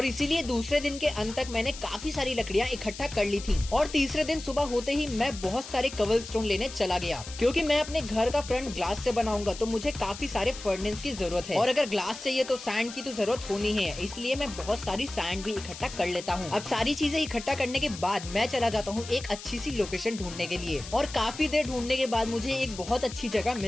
इसीलिए दूसरे दिन के अंत तक मैंने काफी सारी लकड़ियाँ इकट्ठा कर ली थी। और तीसरे दिन सुबह होते ही मैं बहुत सारे कबलस्टोन लेने चला गया, क्योंकि मैं अपने घर का फ्रंट ग्लास से बनाऊंगा, तो मुझे काफी सारे फर्नेस की जरूरत है। और अगर ग्लास चाहिए तो सैंड की तो जरूरत होनी है, इसलिए मैं बहुत सारी सैंड भी इकट्ठा कर लेता हूँ। अब सारी चीजें इकट्ठा करने के बाद मैं चला जाता हूँ एक अच्छी सी लोकेशन ढूंढने के लिए। और काफी देर ढूंढने के बाद मुझे एक बहुत अच्छी जगह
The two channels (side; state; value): left; noise; hiss, 13 dB below the sound